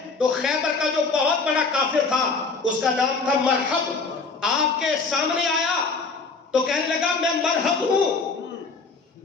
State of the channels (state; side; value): quieter; right; 4.3 dB